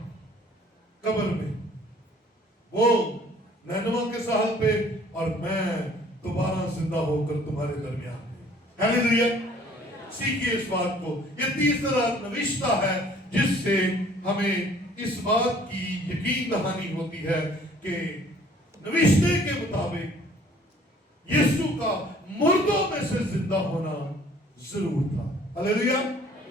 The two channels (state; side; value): normal; both; correlation 0.55